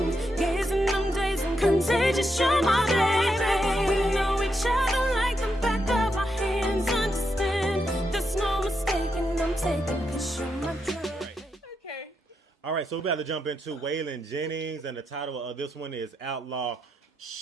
gazing them days and contagious. You're my baby. We know each other like the back of our hands. Understand, there's no mistaking. I'm taking 'cause you're my dream. Okay. All right, so we're about to jump into Waylon Jennings, and the title of this one is Outlaw.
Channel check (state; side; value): normal; both; correlation 0.83